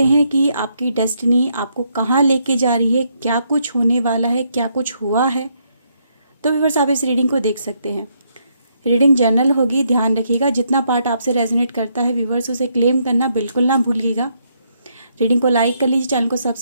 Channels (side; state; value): both; inverted; correlation -0.75